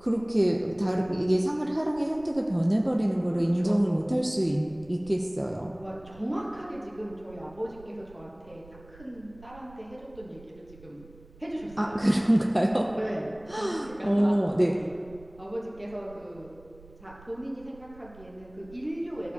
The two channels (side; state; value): right; noise; rumble, 22 dB below the sound